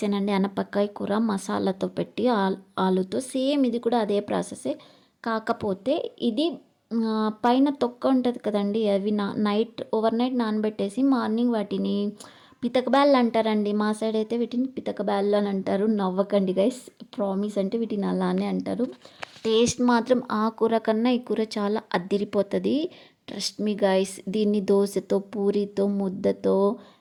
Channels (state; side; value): identical; both; correlation 1.00